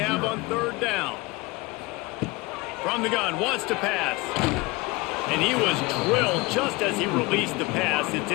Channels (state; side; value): quieter; right; 23.6 dB